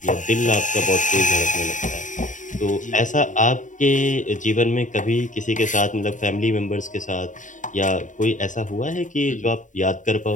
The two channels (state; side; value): late; right; 0.37 ms